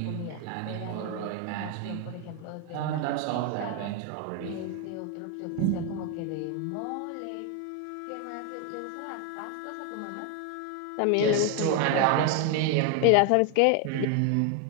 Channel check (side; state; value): both; different; correlation 0.01